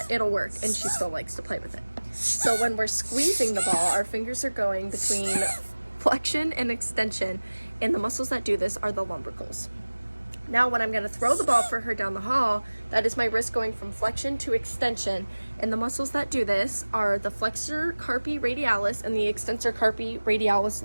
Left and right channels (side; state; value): both; inverted; correlation -1.00